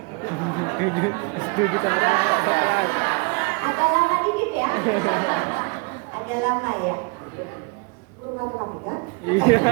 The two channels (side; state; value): left; quieter; 32.6 dB